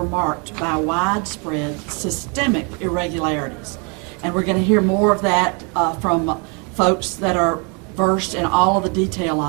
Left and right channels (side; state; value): left; quieter; 34.5 dB